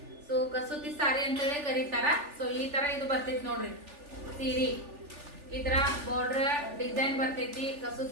ಸೊ ಕಸೂತಿ ಸಾರಿ ಅಂತ ಹೇಳಿ ಕರೀತಾರ. ಸೊ ಈ ತರ ಇದು ಬರ್ತೈತಿ ನೋಡ್ರಿ ಸೀರಿ. ಈ ತರ ಬಾರ್ಡರ್ ಡಿಸೈನ್ ಬರ್ತೈತಿ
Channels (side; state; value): left; late; 3.4 ms